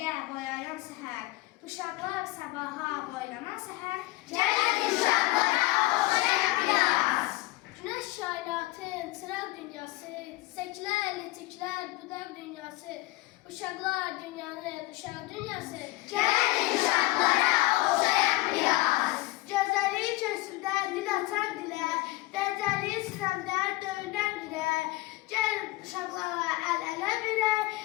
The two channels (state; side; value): quieter; right; 19.7 dB